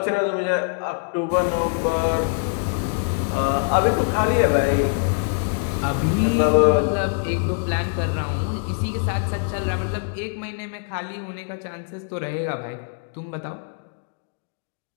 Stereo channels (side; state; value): right; silent; 60 dB below the other